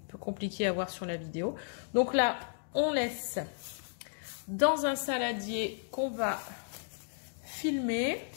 Compliqué à voir sur la vidéo. Donc là, on laisse dans un saladier qu'on va filmer.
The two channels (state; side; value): silent; right; digital silence